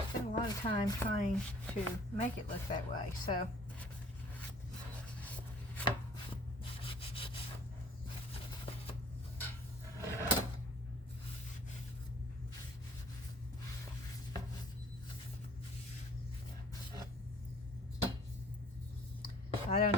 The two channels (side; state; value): both; normal; correlation 0.52